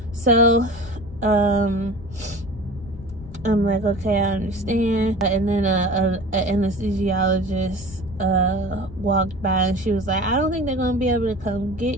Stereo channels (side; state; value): both; normal; correlation 0.38